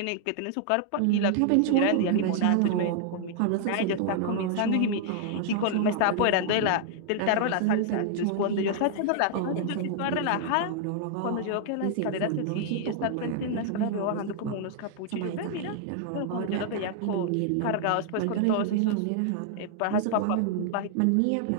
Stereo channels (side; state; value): both; different; correlation 0.00